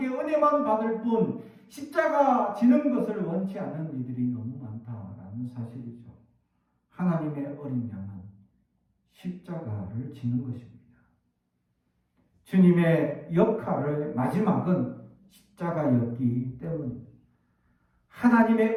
은혜만 받을 뿐 십자가 지는 것을 원치 않는 이들이 너무 많다라는 사실이죠. 하나님의 어린 양은 십자가를 지는 것입니다. 주님의 역할의 마지막은 십자가였기 때문입니다.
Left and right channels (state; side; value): identical; both; correlation 1.00